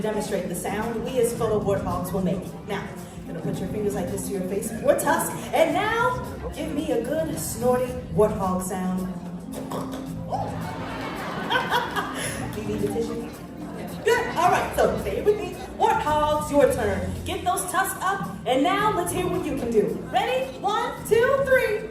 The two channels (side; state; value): both; identical; correlation 1.00